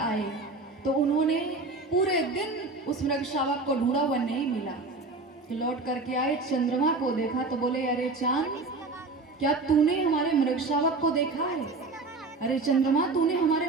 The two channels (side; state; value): left; quieter; 3.6 dB